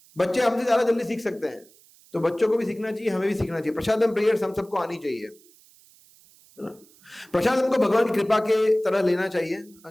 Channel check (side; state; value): right; noise; hiss, 28 dB below the sound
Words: बच्चे हमसे ज्यादा जल्दी सीख सकते हैं, तो बच्चों को भी सीखना चाहिए, हमें भी सीखना चाहिए। प्रसादम प्रेयर्स हम सबको आनी चाहिए, है ना। प्रसादम को भगवान की कृपा के तरह लेना चाहिए,